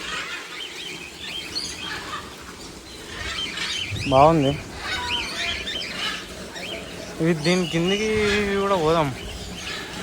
బాగుంది. ఇవి దీని కిందికి కూడా పోదాం.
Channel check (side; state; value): both; identical; correlation 1.00